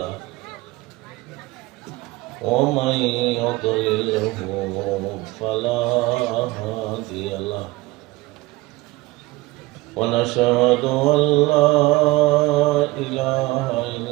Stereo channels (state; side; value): quieter; left; 20.8 dB